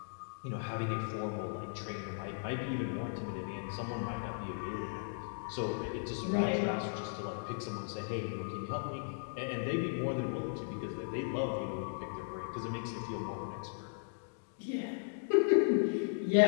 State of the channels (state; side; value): silent; right; digital silence